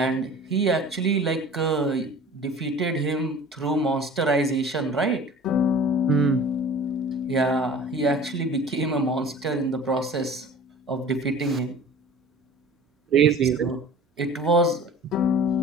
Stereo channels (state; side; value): normal; both; correlation 0.43